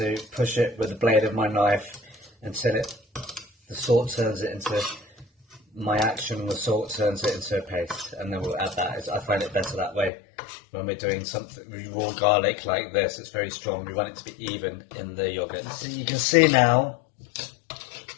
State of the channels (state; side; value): drops out; right; at 10.1 s